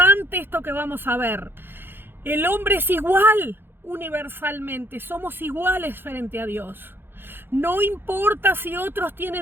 esto que vamos a ver. El hombre es igual universalmente. Somos iguales frente a Dios. No importa si otros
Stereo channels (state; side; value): late; left; 0.10 ms